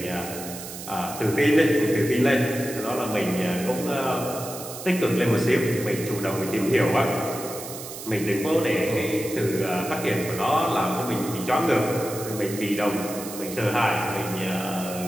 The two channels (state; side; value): noise; right; hiss, 11 dB below the sound